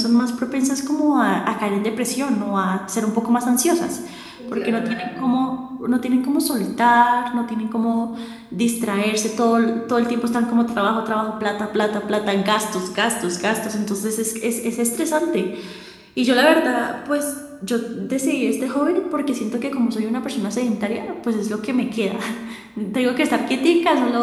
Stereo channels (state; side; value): identical; both; correlation 1.00